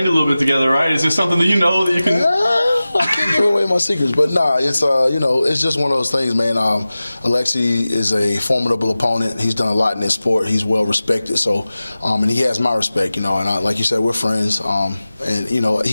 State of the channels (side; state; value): both; inverted; correlation -0.96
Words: a little bit together, right? Is this something that you know that you can? I can't give away my secrets, but nah, it's it's just one of those things, man. Alexei is a formidable opponent. He's done a lot in this sport. He's well respected, so and he has my respect, and like you said, we're friends. And